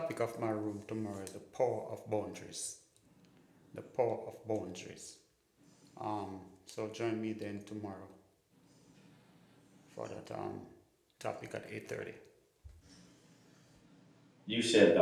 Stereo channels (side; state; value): both; identical; correlation 1.00